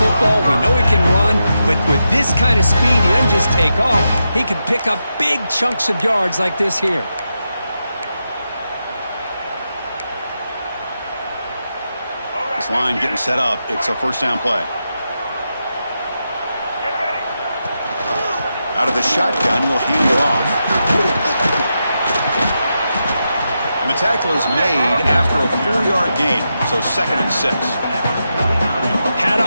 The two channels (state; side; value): inverted; both; correlation -0.87